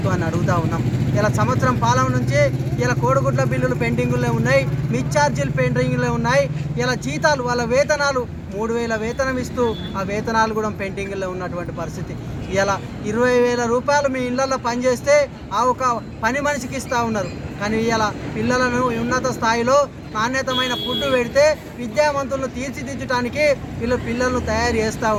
అడుగుతూ ఉన్నాం. ఇలా సంవత్సరం పాలన నుంచి ఇలా కోడిగుడ్ల బిల్లులు పెండింగుల్లో ఉన్నాయి, మిడ్ ఛార్జీలు పెండింగుల్లో ఉన్నాయి. ఇలా జీతాలు, వాళ్ళ వేతనాలు 3,000 వేతనం ఇస్తూ ఆ వేతనాలు కూడా పెండింగ్లో ఉన్నటువంటి పరిస్థితి. ఇలా 20,000 రూపాయలు మీ ఇళ్లలో పనిచేస్తే ఆ ఒక పని మనిషికి ఇస్తూ ఉన్నారు. కానీ ఇలా పిల్లలను ఉన్నత స్థాయిలో నాణ్యతమైన ఫుడ్ పెడితే విద్యావంతులను తీర్చిదిద్దడానికి పిల్లలను తయారు చేస్తూ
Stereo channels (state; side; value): identical; both; correlation 1.00